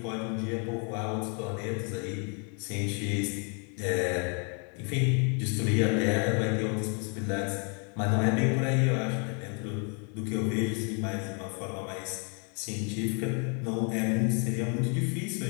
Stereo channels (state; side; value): quieter; right; 37.9 dB